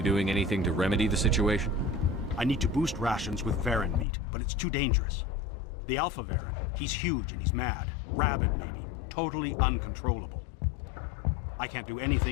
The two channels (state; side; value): drops out; right; at 4.0 s